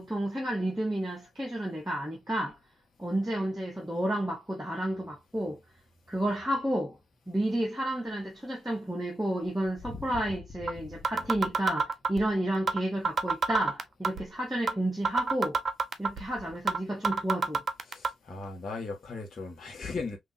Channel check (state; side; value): normal; both; correlation 0.88